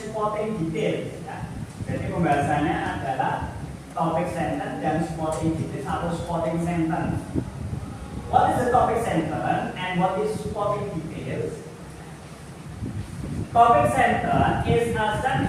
details. Ya. Jadi pembahasannya adalah topic sentence dan supporting details atau supporting sentence. What is the topic sentence and what is supporting details? Topic sentence is a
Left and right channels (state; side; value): identical; both; correlation 1.00